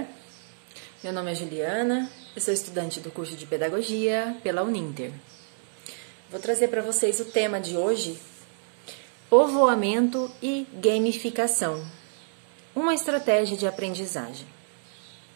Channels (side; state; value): left; silent; digital silence